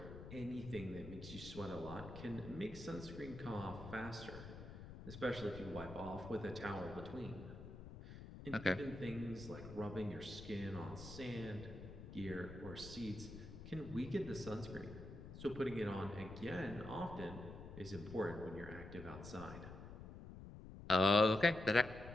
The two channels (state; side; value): noise; left; rumble, 12 dB below the sound